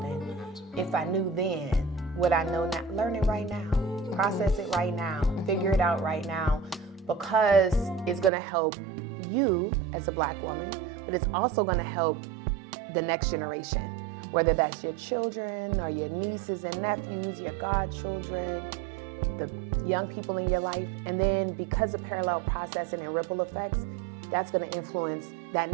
it. If I knew then what I know now, learn it right now, process it right now, figure it out right now, because it's gonna help you as a Black woman, but it's also gonna help the next generation, whether that's your children or your nieces and nephews, your godchildren, the young people in your life. And then because of parallel processing and ripple effects, that's going to influence that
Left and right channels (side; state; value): left; drops out; at 8.3 s